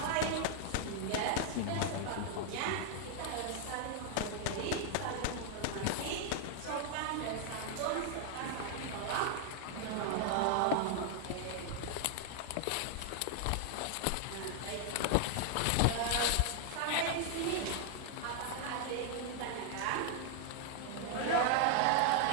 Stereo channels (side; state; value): both; different; correlation 0.00